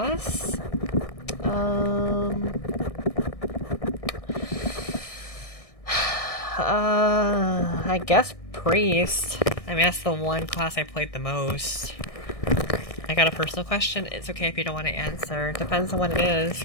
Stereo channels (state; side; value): late; right; 1.6 ms